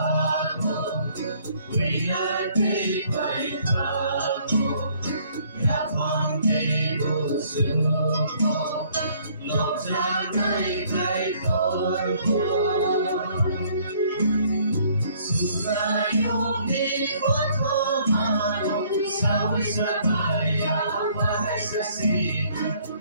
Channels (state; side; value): inverted; both; correlation -0.62